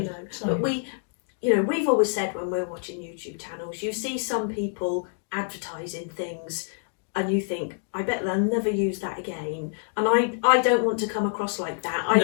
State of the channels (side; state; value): right; silent; digital silence